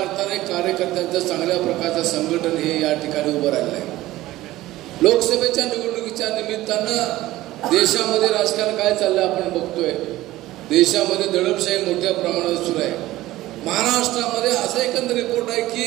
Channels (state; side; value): quieter; left; 16.5 dB